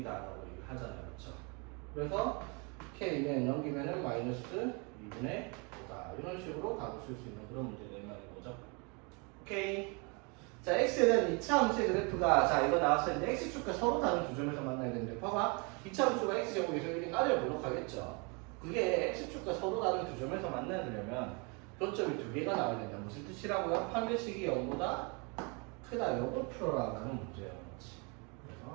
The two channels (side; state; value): left; quieter; 32.0 dB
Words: 라고 얘기를 하잖아요. 그렇죠? 그래서 k는 넘기면은 마이너스 2분의 5다. 이런 식으로 답을 쓸 수 있는 그런 문제가 이 말인 거죠. 오케이. 자, x에 대한 2차 함수의 그래프가 자 이거 나왔었는데 x축과 서로 다른 두 점에서 만나야 되는데 봐봐. 2차 함수가 x제곱에서 1인 아래로 하겠죠. 그게 x축과 서로 다른 두 점에서 만나려면 교점이 두 개가 나와야 된다. 무슨 뜻이라고요? 판별식이 0보다 크다. 요거 풀어라라는 문제예요.